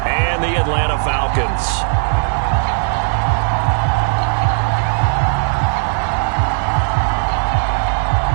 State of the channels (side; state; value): left; silent; digital silence